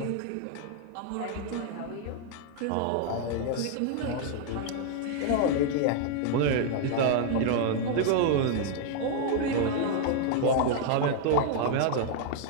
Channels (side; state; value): both; different; correlation 0.00